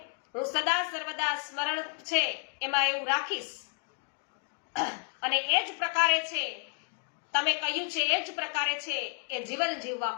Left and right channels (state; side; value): quieter; right; 39.7 dB